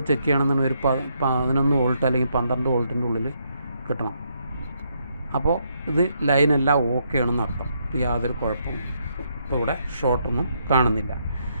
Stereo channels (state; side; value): inverted; both; correlation -0.75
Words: ചെക്ക് ചെയ്യണമെന്നുണ്ടെങ്കിൽ ഒരു 11 വോൾട്ട് അല്ലെങ്കിൽ 12 വോൾട്ടിൻ്റെ ഉള്ളിൽ കിട്ടണം. അപ്പോൾ ഇത് ലൈനെല്ലാം ഓക്കെ ആണെന്ന് അർത്ഥം. യാതൊരു കുഴപ്പവും ഇപ്പോൾ ഇവിടെ ഷോർട്ടൊന്നും കാണുന്നില്ല.